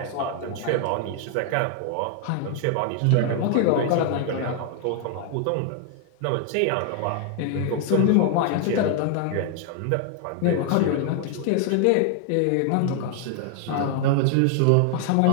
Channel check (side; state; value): both; different; correlation 0.00